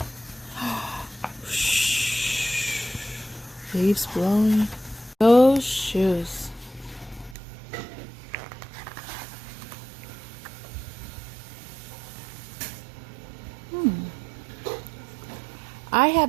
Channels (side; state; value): left; drops out; at 7.4 s